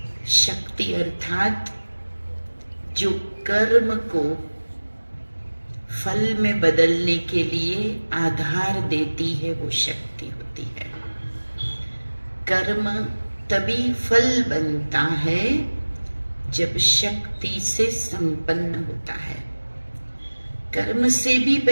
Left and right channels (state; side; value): inverted; both; correlation -1.00